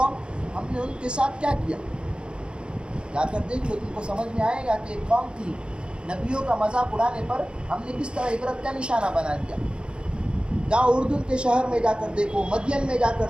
ہم نے ان کے ساتھ کیا کیا، جا کر دیکھ لو، تم کو سمجھ میں آئے گا کہ ایک قوم تھی. نبیوں کا مذاق اڑانے پر ہم نے کس طرح عبرت کا نشانہ بنا دیا. جاؤ اردن کے شہر میں جا کر دیکھو، مدین میں جا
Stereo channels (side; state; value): left; late; 0.053 ms